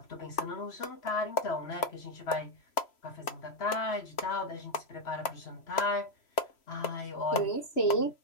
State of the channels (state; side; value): late; right; 3.0 ms